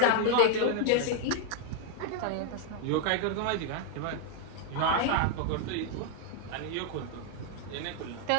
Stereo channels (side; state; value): both; different; correlation 0.00